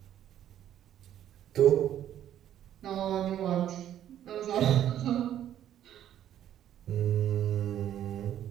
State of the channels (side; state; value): left; quieter; 11.1 dB